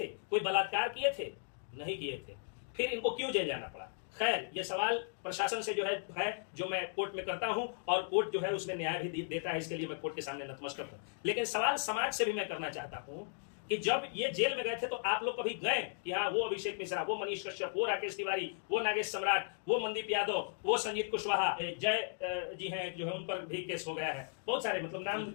कोई बलात्कार किए थे, नहीं किए थे, फिर इनको क्यों जेल जाना पड़ा। खैर, ये सवाल प्रशासन से जो है जो मैं कोर्ट में करता हूं और कोर्ट जो है उसमें न्याय भी देता है, इसके लिए मैं कोर्ट के सामने नतमस्तक हूं। लेकिन सवाल समाज से भी मैं करना चाहता हूं कि जब ये जेल में गए थे तो आप लोग कभी गए कि हाँ वो अभिषेक मिश्रा, वो मनीष कश्यप, वो राकेश तिवारी, वो नागेश सम्राट, वो मनदीप यादव, वो संजीत कुशवाहा, जय जी हैं जो है उन पर भी केस हो गया है, बहुत सारे, मतलब नाम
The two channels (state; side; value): silent; right; digital silence